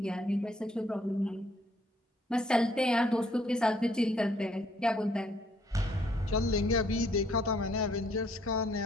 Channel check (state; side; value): normal; both; correlation 0.66